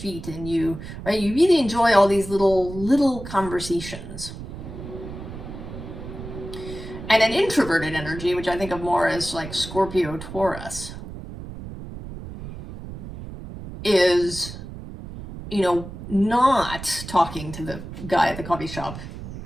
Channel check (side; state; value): right; noise; rumble, 11 dB below the sound